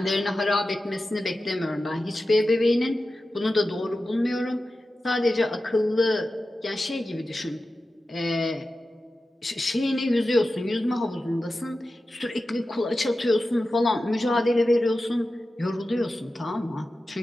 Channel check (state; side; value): normal; both; correlation 0.93